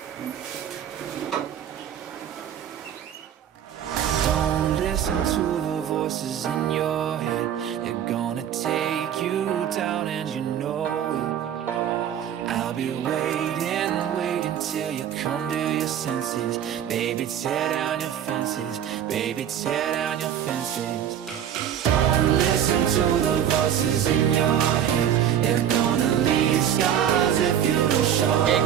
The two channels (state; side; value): quieter; left; 9.7 dB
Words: Don't listen to the voices in your head. They're gonna take you down and you know it. I'll be waiting till you come to your senses. Baby, tear down your fences. Baby, tear down your fences. Don't listen to the voices in your head. They're gonna leave scars if you don't show